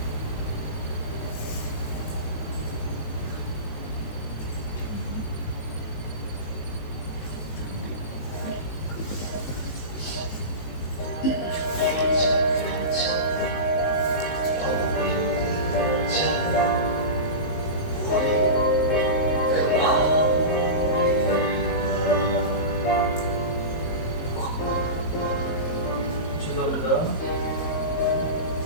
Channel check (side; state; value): right; late; 19 ms